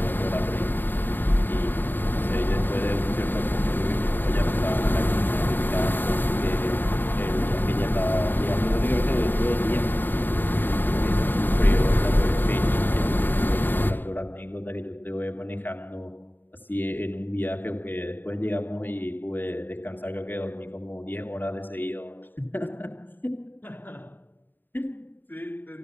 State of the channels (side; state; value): right; late; 0.092 ms